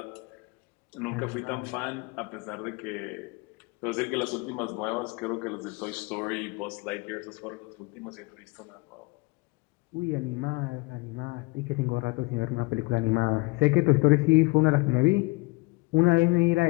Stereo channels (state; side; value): quieter; right; 25.8 dB